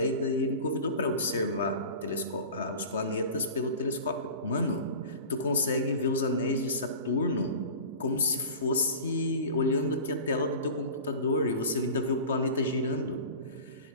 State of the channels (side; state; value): both; inverted; correlation -0.36